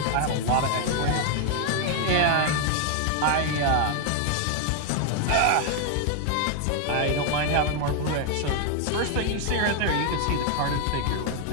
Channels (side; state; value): both; different; correlation 0.00